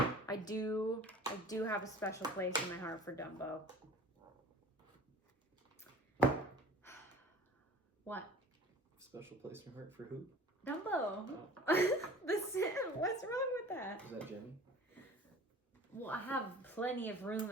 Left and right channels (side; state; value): both; normal; correlation 0.44